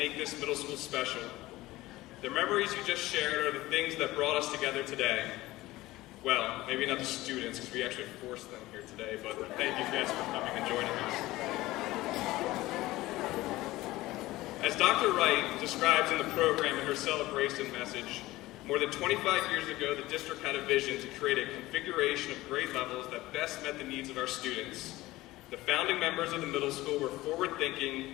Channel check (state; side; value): quieter; right; 18.1 dB